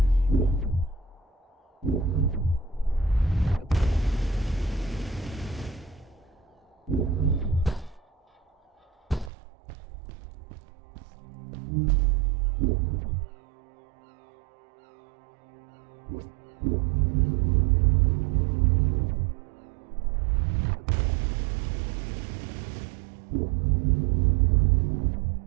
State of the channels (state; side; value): drops out; left; at 9.3 s